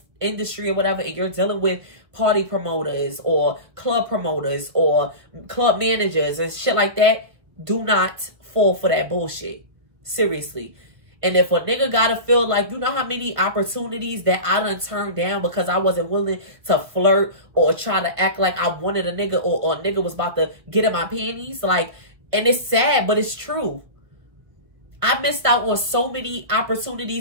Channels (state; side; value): late; left; 1.8 ms